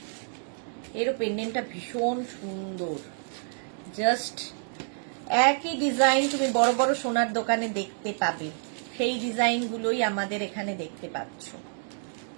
এরও পেন্ডেন্টটা ভীষণ সুন্দর, জাস্ট একই ডিজাইন তুমি বড় বড় সোনার দোকানে দেখতে পাবে, সেই ডিজাইনগুলোই আমাদের এখানে দেখতে পাচ্ছ।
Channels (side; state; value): left; silent; digital silence